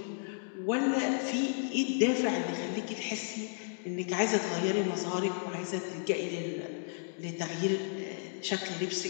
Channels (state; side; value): silent; right; digital silence